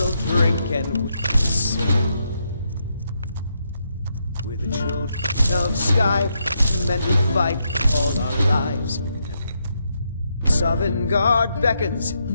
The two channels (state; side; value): inverted; both; correlation -0.80